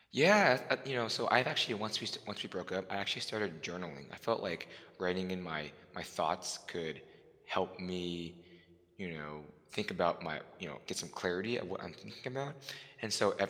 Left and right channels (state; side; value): identical; both; correlation 1.00